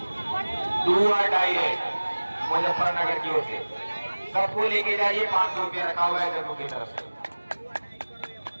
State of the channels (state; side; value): inverted; both; correlation -1.00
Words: मुजफ्फरनगर की ओर से सबको लेके जाइए। 500 रुपया रखा हुआ है जगहों की तरफ से।